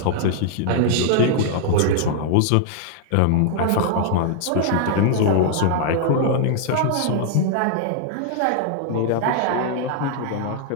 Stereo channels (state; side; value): different; both; correlation -0.01